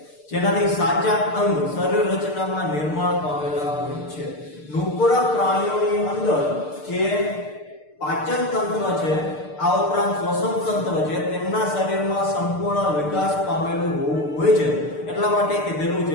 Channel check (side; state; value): right; late; 6.7 ms